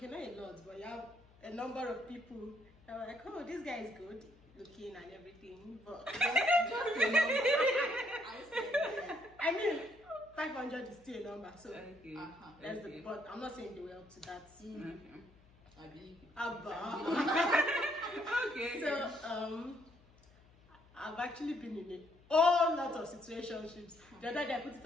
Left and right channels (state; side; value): noise; left; hum, 27 dB below the sound